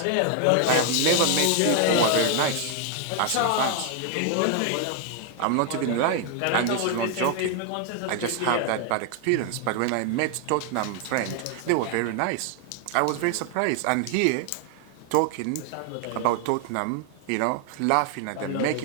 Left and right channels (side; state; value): both; different; correlation 0.00